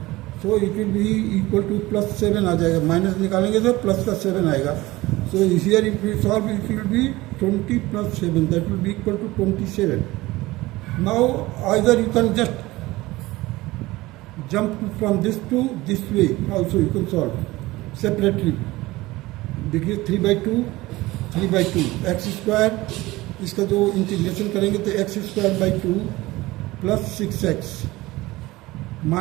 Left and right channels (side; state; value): left; quieter; 19.3 dB